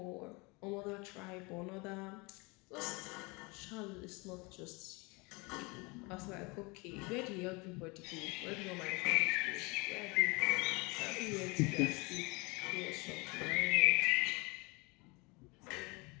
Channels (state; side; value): quieter; right; 27.1 dB